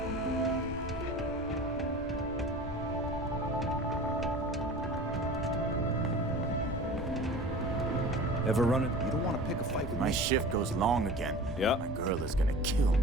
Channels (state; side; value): normal; both; correlation 0.39